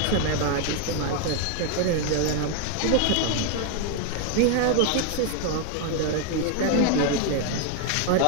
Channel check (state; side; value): different; both; correlation 0.01